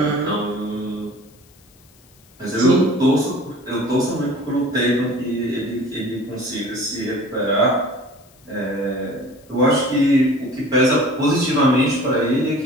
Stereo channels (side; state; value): left; noise; hiss, 29 dB below the sound